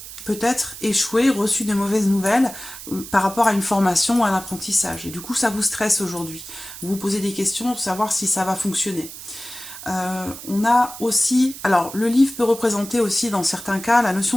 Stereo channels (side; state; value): right; noise; hiss, 13 dB below the sound